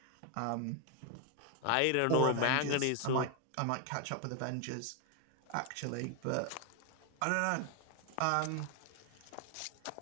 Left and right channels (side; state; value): both; different; correlation 0.01